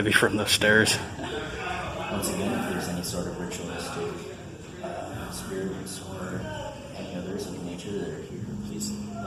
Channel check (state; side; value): identical; both; correlation 1.00